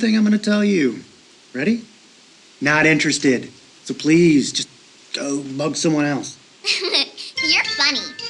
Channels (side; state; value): both; identical; correlation 1.00